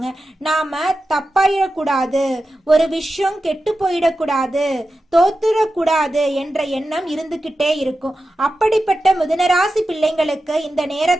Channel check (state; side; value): normal; both; correlation 0.92